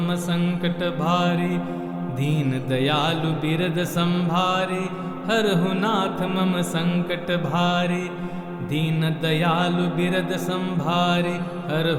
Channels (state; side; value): identical; both; correlation 1.00